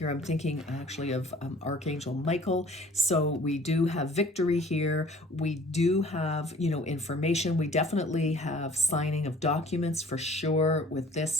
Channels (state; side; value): normal; both; correlation 0.52